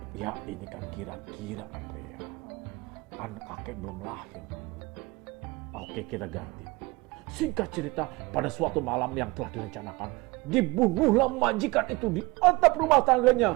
Ya ini kan kira-kira Andrea. Kan kakek belum lahir dulu. Oke, kita ganti. Singkat cerita, pada suatu malam yang telah direncanakan, dibunuhlah majikan itu di atap rumah tangganya.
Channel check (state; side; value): quieter; left; 23.6 dB